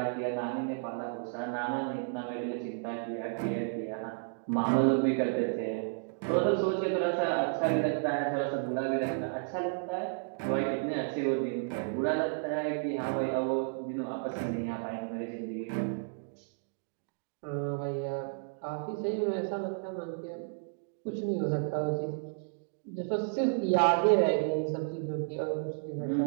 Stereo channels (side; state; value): left; silent; digital silence